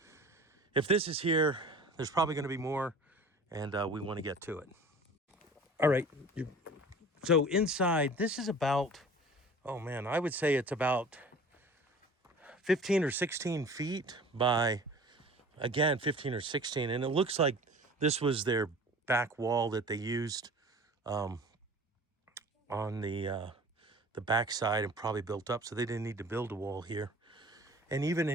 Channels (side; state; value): both; normal; correlation 0.43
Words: if this is here, there's probably gonna be more, and we wanna get to it. All right, so inside, this is about, oh man, I would say it's about 15 or 16 feet by, again, 15 or 16. And it looks like this was their back wall that they used on the back side and probably built up, so they didn't need to build a wall here. And even